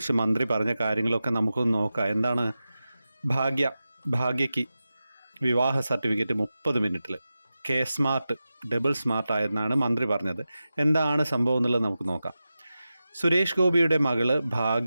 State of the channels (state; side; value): inverted; both; correlation -0.93